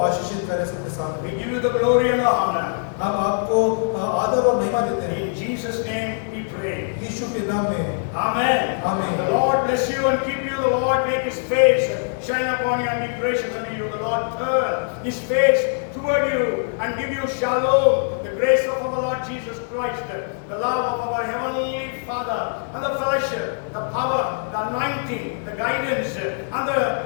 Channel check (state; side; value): silent; right; digital silence